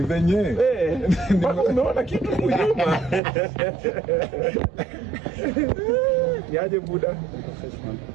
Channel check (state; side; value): drops out; left; at 3.2 s